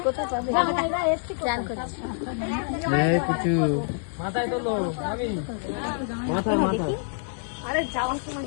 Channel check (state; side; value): silent; right; digital silence